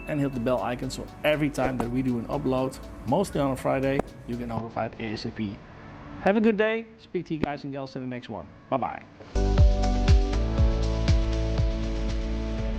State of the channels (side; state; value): both; identical; correlation 1.00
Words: and hit the bell icon so every time that we do an upload, mostly on a Friday, you get notified ASAP. Have a good day. Speak to you guys and gals in the next one. Bye bye.